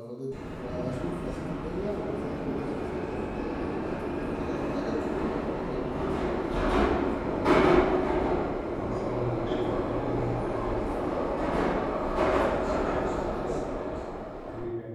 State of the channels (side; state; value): both; identical; correlation 1.00